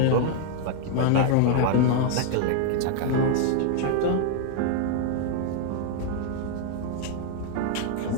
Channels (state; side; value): different; both; correlation 0.00